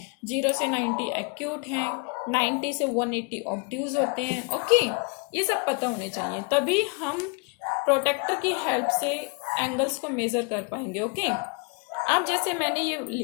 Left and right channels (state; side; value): quieter; right; 32.5 dB